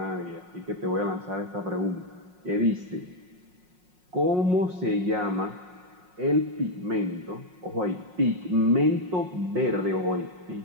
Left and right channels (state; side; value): late; left; 5.5 ms